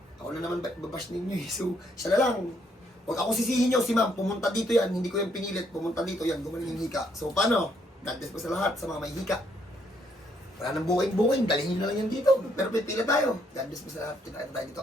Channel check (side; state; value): both; normal; correlation 0.71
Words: ako na naman babash ninyo eh. So, siya na lang. Huwag ako sisihin nyo si ma'am. Pumunta dito yan. Hindi ko yung pinilit. Pumunta dito yan. Gumaling yung hika. So, paano? God bless po sa lahat. Sa mga may hika. Wala nang booking. Dalhin nyo na lang yan dito. Pero pipila tayo. God bless po sa lahat. Kita tayo dito.